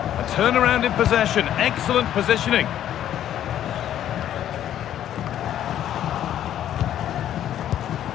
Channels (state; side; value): quieter; right; 11.1 dB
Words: A turnaround in possession, excellent positioning.